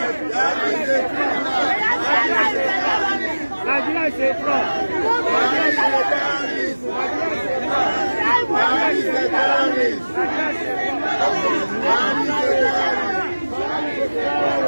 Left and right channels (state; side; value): inverted; both; correlation -1.00